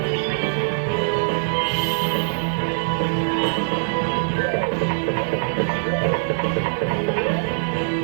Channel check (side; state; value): left; silent; 61 dB below the other